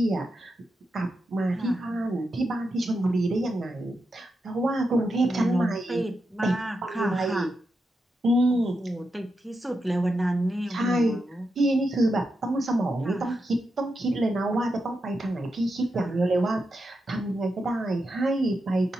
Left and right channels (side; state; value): both; normal; correlation 0.87